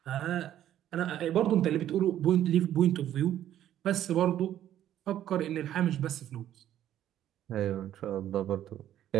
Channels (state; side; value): quieter; left; 11.7 dB